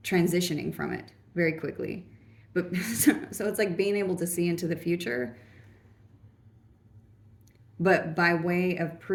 transitioning from it very quickly. But so it's like being able to see into the future, but by way of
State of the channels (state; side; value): identical; both; correlation 1.00